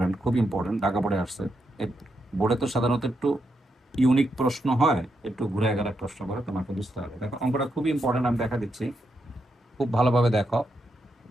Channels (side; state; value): both; normal; correlation 0.83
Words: খুব ইম্পর্টেন্ট, ঢাকা বোর্ডে আসছে। বোর্ডে তো সাধারণত একটু ইউনিক প্রশ্ন হয়, একটু ঘুরে গেলে প্রশ্ন করে, তোমাকে বুঝতে হবে। দেখো অঙ্কটা খুবই ইম্পর্টেন্ট, আমি দেখা দিচ্ছি, খুব ভালোভাবে দেখো।